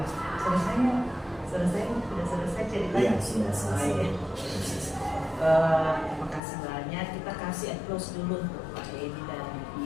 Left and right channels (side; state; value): right; drops out; at 6.4 s